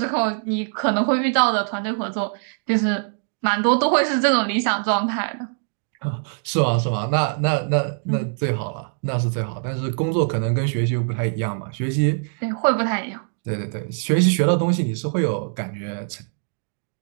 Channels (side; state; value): left; silent; 64 dB below the other